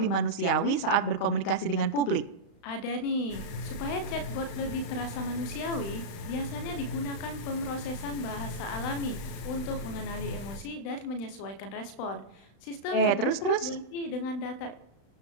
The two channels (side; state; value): right; late; 35 ms